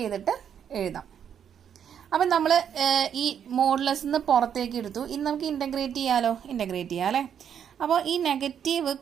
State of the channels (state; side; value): quieter; left; 8.5 dB